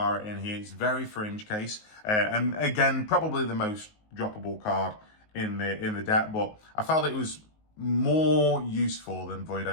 in here. It's very fringe case, and again, probably the most droppable card in the deck, but I felt it was more useful than Void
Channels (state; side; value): late; right; 19 ms